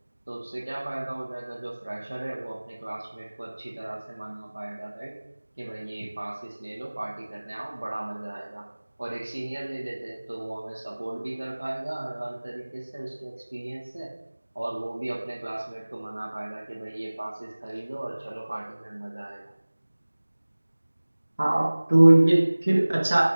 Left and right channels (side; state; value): both; inverted; correlation -1.00